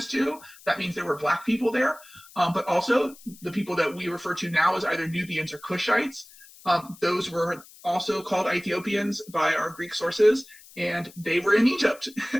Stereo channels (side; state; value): left; noise; hiss, 22 dB below the sound